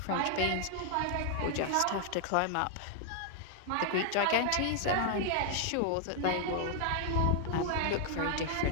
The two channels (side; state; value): both; different; correlation 0.00